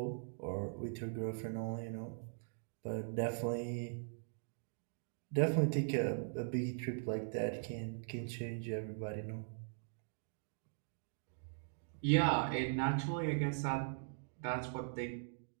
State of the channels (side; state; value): left; silent; digital silence